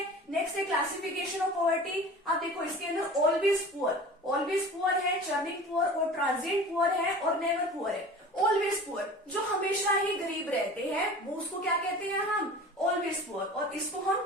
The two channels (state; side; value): normal; both; correlation 0.39